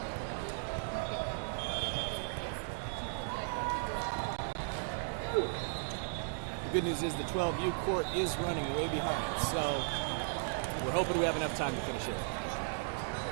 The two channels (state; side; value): silent; left; digital silence